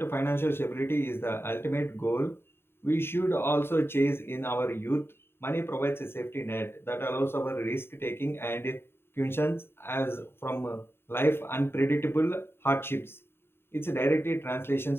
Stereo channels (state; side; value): late; right; 0.11 ms